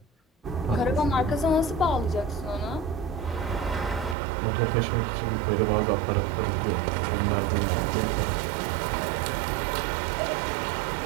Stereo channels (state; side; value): drops out; left; at 4.2 s